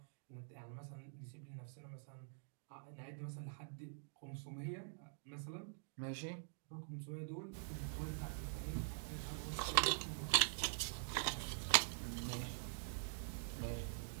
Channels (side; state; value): left; silent; digital silence